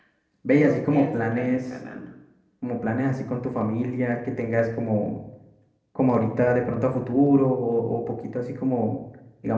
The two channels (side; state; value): both; identical; correlation 1.00